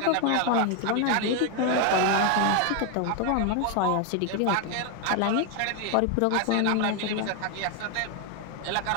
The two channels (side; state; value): both; different; correlation 0.01